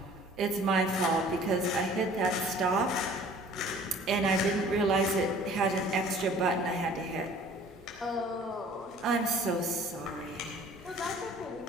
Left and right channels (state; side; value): normal; both; correlation 0.50